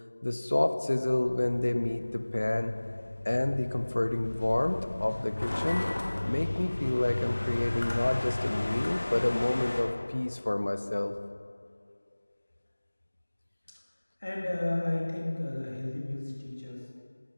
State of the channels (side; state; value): both; inverted; correlation -1.00